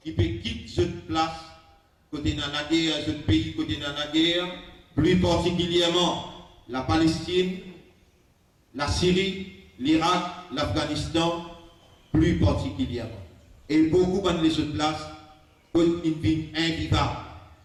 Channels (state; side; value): identical; both; correlation 1.00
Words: qui peut quitter cette place, côté dans la guerre, ce pays côté dans la guerre, plus particulièrement la Palestine, la Syrie, l'Irak, l'Afghanistan, plus particulièrement. Et beaucoup de les autres places, une vie invivable.